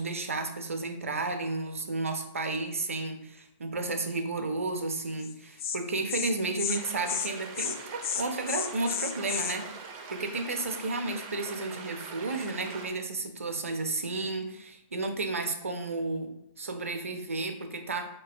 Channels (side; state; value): both; inverted; correlation -0.38